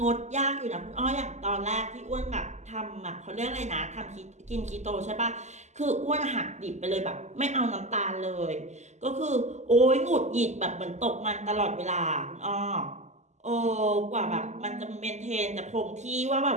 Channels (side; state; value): left; late; 0.33 ms